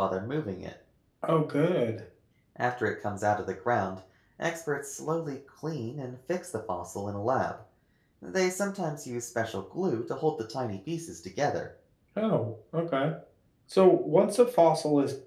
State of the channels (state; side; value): identical; both; correlation 1.00